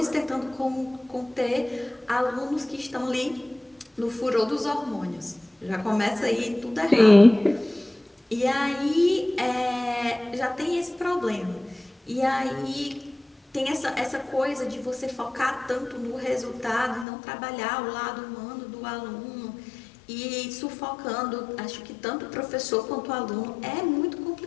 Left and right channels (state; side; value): drops out; right; at 17.1 s